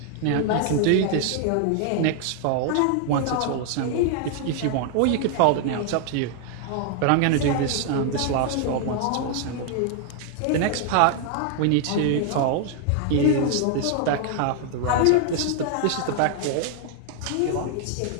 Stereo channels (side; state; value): both; different; correlation 0.00